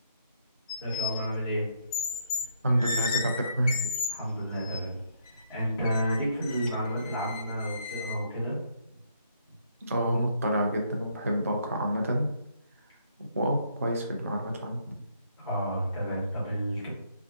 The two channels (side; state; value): both; inverted; correlation -0.73